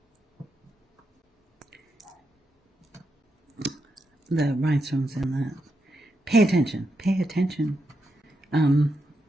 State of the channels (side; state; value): both; normal; correlation 0.84